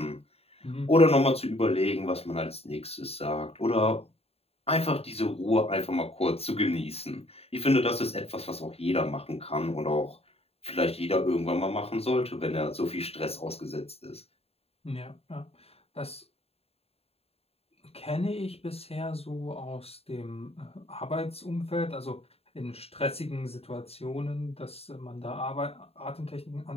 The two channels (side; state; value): right; late; 0.29 ms